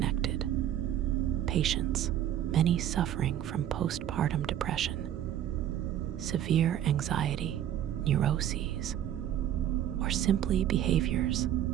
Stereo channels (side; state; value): left; quieter; 11.1 dB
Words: Patients, many suffering from postpartum depression, severe anxiety, neuroses, or simply behaviors